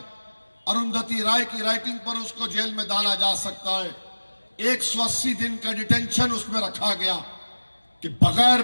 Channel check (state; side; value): inverted; both; correlation -1.00